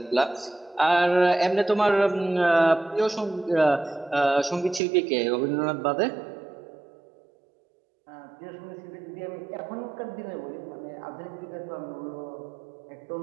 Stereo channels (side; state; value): left; drops out; at 4.8 s